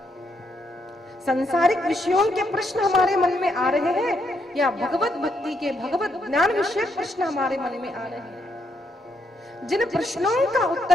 संसारिक विषयों के प्रश्न हमारे मन में आ रहे हैं या भगवत भक्ति के, भगवत ज्ञान विषय प्रश्न हमारे मन में आ रहे हैं? जिन प्रश्नों का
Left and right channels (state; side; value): normal; both; correlation 0.76